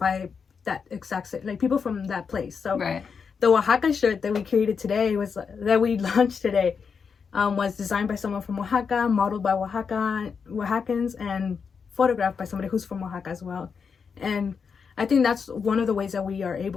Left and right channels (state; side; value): quieter; right; 5.9 dB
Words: that exact, like, people from that place. So the Oaxaca shirt that we created today that we launched today was designed by someone from Oaxaca, modeled by Oaxacans, and photographed by somebody who's from Oaxaca as well. And I think that's one of the ways that we are